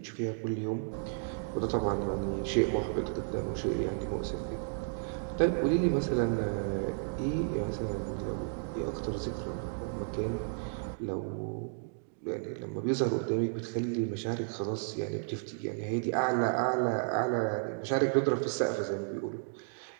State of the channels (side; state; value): left; silent; digital silence